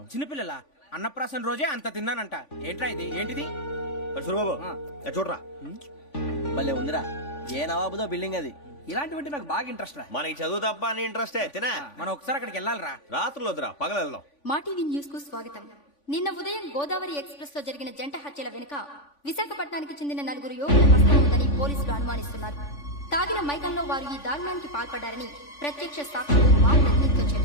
చిన్నపిల్లల అన్నప్రాసన రోజే అంత తిన్నానంట. ఏంట్రా ఇది? ఏంటిది? సూరిబాబు చూడరా, భలే ఉందిరా. ఏ నవాబుదో బిల్డింగ్ అది. ఇలాంటివంటే నాకు బాగా ఇంట్రెస్ట్ రా. మనకి చదువు తప్ప అని ఇంట్రెస్టే తినా. మనం ఒకసారి అక్కడికి వెళ్ళాలిరా. రాత్రులు వద్దురా, పగలు వెళ్దాం. మా టీవీ న్యూస్ కు స్వాగతం. నిన్న ఉదయం గోదావరి ఎక్స్ప్రెస్ లో జరిగిన జంట హత్యల వెనుక విశాఖపట్నానికి చెందిన 4 యువకుల హస్తం ఉందని పోలీసులు అనుమానిస్తున్నారు. తాగిన మైకంలో వారు ఈ దారుణానికి పాల్పడ్డారని ప్రత్యక్ష సాక్షులు మా ప్రతినిధితో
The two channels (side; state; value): right; late; 3.5 ms